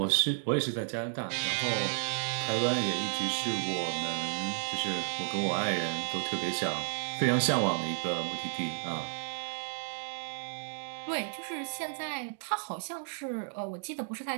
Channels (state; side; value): silent; left; digital silence